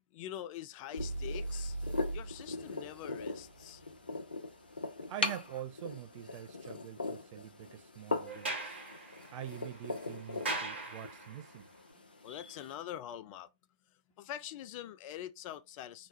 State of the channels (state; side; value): inverted; both; correlation -0.36